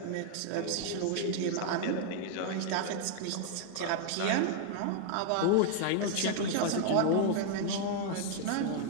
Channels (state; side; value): different; both; correlation 0.00